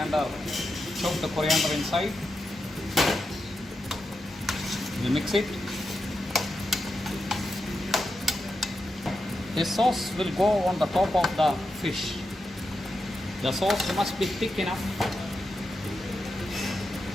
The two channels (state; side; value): normal; both; correlation 0.87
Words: chop the coriander inside. We mix it. This sauce will go on the top of the fish. The sauce must be thick enough.